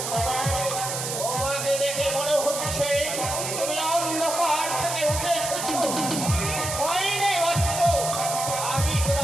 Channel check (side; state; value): right; noise; hiss, 4 dB below the sound